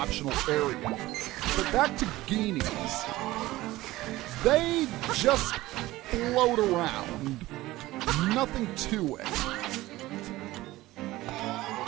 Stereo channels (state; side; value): quieter; left; 17.7 dB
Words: area. But back to Geenies. They just float around. Nothing to it.